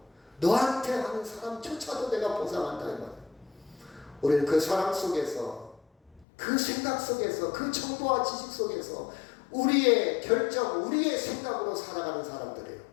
너한테 하는 사람조차도 내가 보상한다 이 말이에요. 우리는 그 사랑 속에서, 그 생각 속에서, 그 정보와 지식 속에서 우리의 결정, 우리의 생각으로 살아가는 사람들이에요.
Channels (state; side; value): drops out; right; at 6.2 s